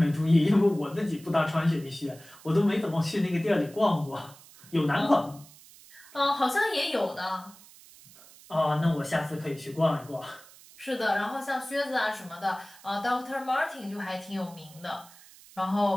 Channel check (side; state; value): right; noise; hiss, 22 dB below the sound